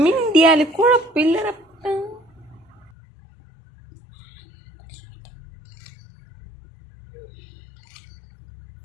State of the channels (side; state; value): right; drops out; at 2.9 s